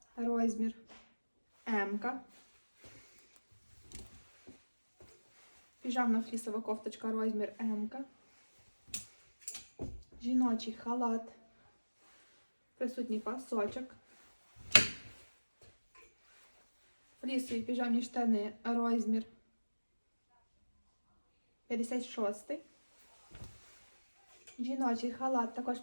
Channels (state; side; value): inverted; both; correlation -1.00